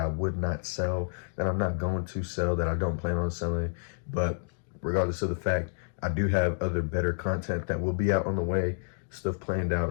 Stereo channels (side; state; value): right; silent; digital silence